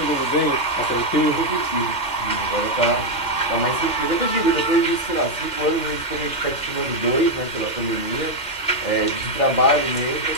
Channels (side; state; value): right; late; 3.3 ms